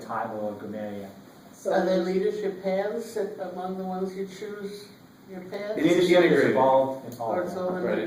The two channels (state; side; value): identical; both; correlation 1.00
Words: or a grammarian. Are there So, leadership paths among the ones you choose, your paths? It's Leadership is integrated. involved in all Or of it's that. all Right,